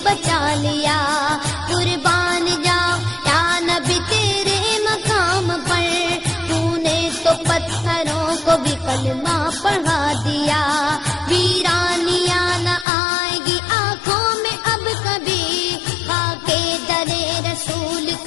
بچا لیا، قربان جاؤ یا نبی تیرے مقام پر، تو نے تو پتھروں کو بھی کلمہ پڑھا دیا، ویرانیاں نہ آئے گی آنکھوں میں اب کبھی، خاکے درے رسول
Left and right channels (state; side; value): drops out; right; at 12.9 s